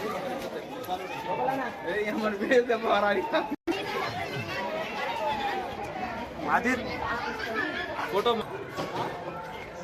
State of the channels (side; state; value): both; identical; correlation 1.00